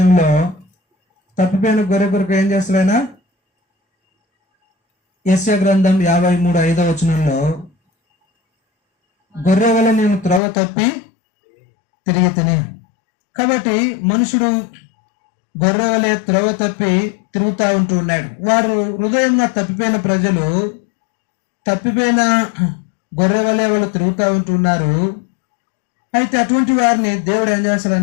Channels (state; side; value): drops out; right; at 10.4 s